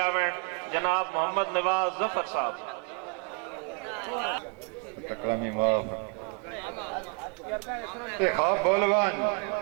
जनाब मोहम्मद नवाज जफर साहब अकरमी माफ ते ख्वाब बोलवान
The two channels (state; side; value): quieter; left; 35.0 dB